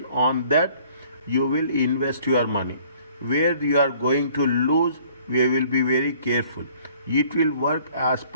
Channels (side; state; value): both; inverted; correlation -0.57